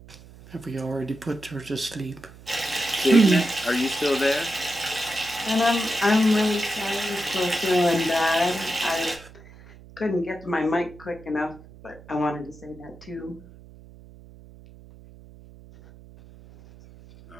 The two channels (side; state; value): right; noise; hum, 21 dB below the sound